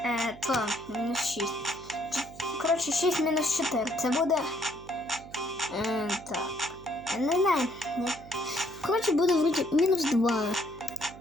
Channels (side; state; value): right; noise; hum, 18 dB below the sound